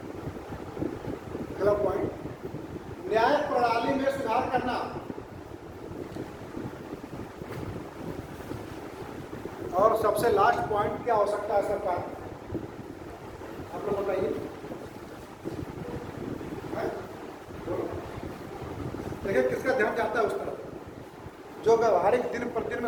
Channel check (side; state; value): both; identical; correlation 1.00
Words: अगला पॉइंट, न्याय प्रणाली में सुधार करना। और सबसे लास्ट पॉइंट क्या हो सकता है सरकार? आप लोग बताइए। देखिए किसका ध्यान जाता है उस तरफ, जो व्यवहारिक दिन प्रतिदिन